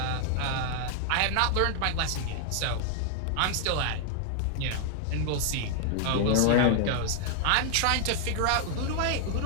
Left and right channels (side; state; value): both; different; correlation 0.00